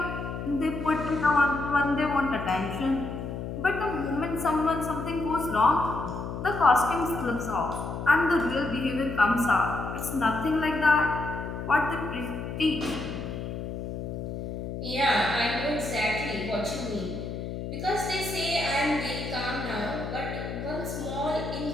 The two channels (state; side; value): noise; left; hum, 6 dB below the sound